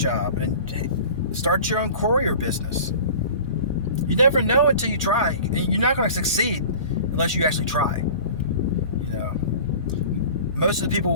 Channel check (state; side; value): inverted; both; correlation -0.41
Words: and start your own courier business. You never know until you try. You're not going to succeed unless you actually try. Most of the people